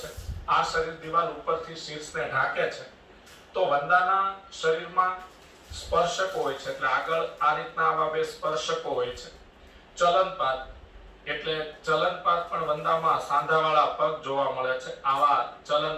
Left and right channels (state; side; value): identical; both; correlation 1.00